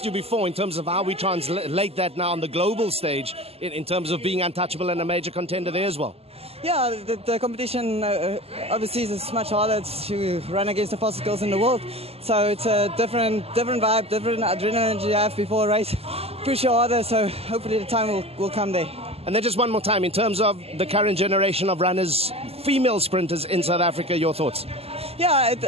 you before in terms of how we translate that now on the global stage in terms of being untouchable and a major contender there as well. Yeah, the competition overseas is much harder to run against the fastest girls in the world. So it's a different vibe, different adrenaline you have before a race. Push you harder, so hopefully the time will come there. And then just one more time, in terms of the current generation of runners, female sprinters in South Africa, your thoughts? Yeah,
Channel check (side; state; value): left; late; 0.29 ms